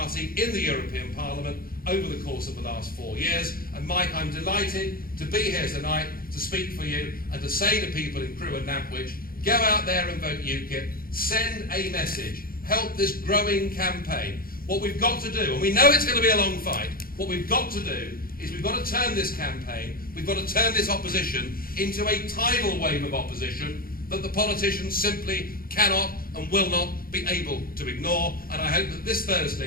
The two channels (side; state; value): right; late; 0.42 ms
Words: in the European Parliament over the course of the last 4 years. And Mike, I'm delighted to be here tonight to speak for you and to say to people in Crewe and Nantwich, go out there and vote UKIP, send a message, help this growing campaign. What we've got to do, and we know it's going to be a long fight, what we've got to do is we've got to turn this campaign, we've got to turn this opposition into a tidal wave of opposition that the politicians simply cannot and will not be able to ignore. And I hope that this